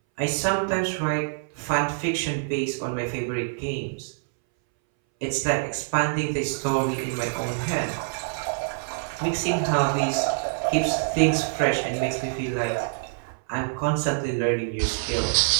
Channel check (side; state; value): left; silent; 61 dB below the other